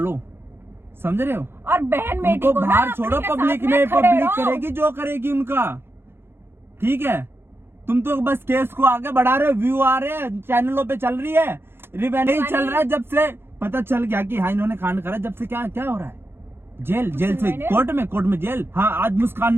समझ रहे हो? और बहन बेटी उनको को बाहर ना छोड़ो, अपने के पब्लिक साथ में, खड़े पब्लिक रहो। करेगी जो करेगी उनका। ठीक है, तुम तो बस केस को आगे बढ़ा रहे हो, व्यू आ रहे हैं, चैनलों पे चल रही है, नहीं चल रहा है। जब से पता चल गया कि हाँ इन्होंने कांड करा, जब से क्या क्या हो रहा है, जेल से कोर्ट में जेल। हाँ, आज मुस्कान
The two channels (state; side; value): late; left; 0.11 ms